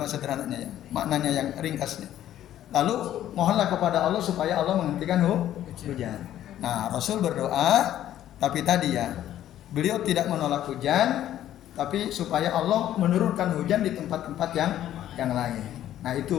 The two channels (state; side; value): quieter; right; 12.1 dB